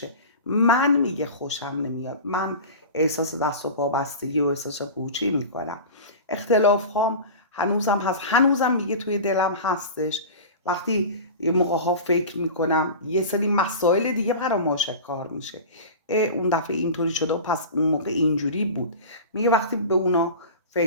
من میگه خوشم نمیاد، من احساس دست و پا بستگی و احساس پوچی میکنم. اختلاف هام هنوزم هست، هنوزم میگه توی دلم هستش. وقتی یه موقع ها فکر میکنم یه سری مسائل دیگه برام آشکار میشه، اون دفعه اینطوری شده و پس اون موقع اینجوری بود. میگه وقتی به اونا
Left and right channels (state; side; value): inverted; both; correlation -0.32